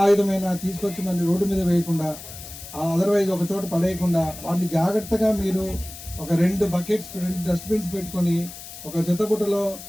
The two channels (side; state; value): left; noise; hiss, 13 dB below the sound